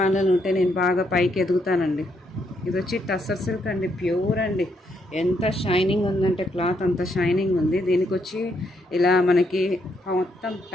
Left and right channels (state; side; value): normal; both; correlation 0.76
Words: వాళ్ళని ఉంటే నేను బాగా పైకి ఎదుగుతానండి. ఇది వచ్చి టస్సర్ సిల్క్ అండి, ప్యూర్ అండి. ఎంత షైనింగ్ ఉందంటే క్లాత్ అంత షైనింగ్ ఉంది. దీనికి వచ్చి ఇలా మనకి మొత్తం